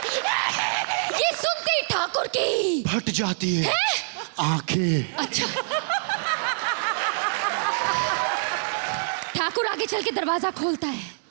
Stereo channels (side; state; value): left; silent; 62 dB below the other